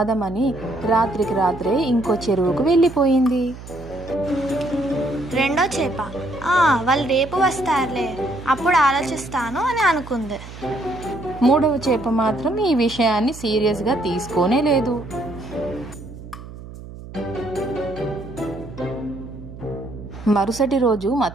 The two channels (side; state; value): right; noise; hum, 14 dB below the sound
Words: రాత్రికి రాత్రే ఇంకో చెరువుకు వెళ్ళిపోయింది. రెండో చేప వాళ్ళు రేపు వస్తారులే, అప్పుడు ఆలోచిస్తాను అని అనుకుంది. మూడవ చేప మాత్రం ఈ విషయాన్ని సీరియస్గా తీసుకోనే లేదు. మరుసటి రోజు